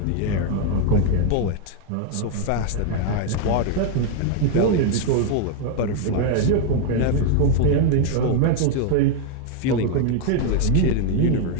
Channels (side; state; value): both; different; correlation 0.00